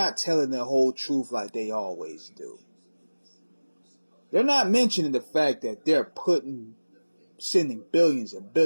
telling the whole truth like they always do. They're not mentioning the fact that they're sending billions and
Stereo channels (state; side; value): inverted; both; correlation -1.00